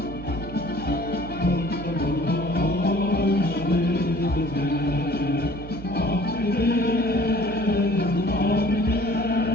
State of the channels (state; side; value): noise; right; hum, 12 dB below the sound